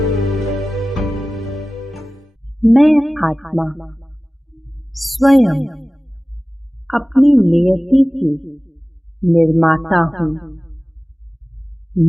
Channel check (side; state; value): both; normal; correlation 0.97